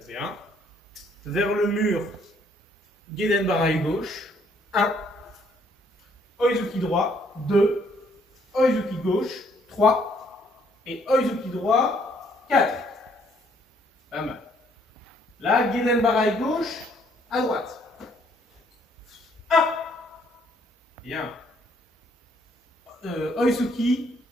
bien. Vers le mur, Gedenbarai, gauche, 1. Oizuki droit, 2. Oizuki gauche, 3. Et Oizuki droit, 4. Pas mal. Là, Gedenbarai gauche, à droite. 1. Bien. Oizuki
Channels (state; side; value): normal; both; correlation 0.66